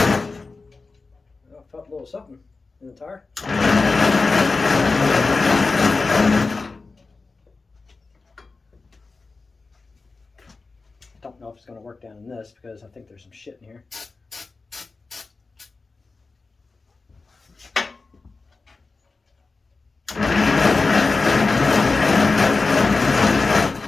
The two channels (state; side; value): quieter; right; 3.9 dB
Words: felt a little something in the tire. Don't know if it's going to work down in this because I think there's some shit in here.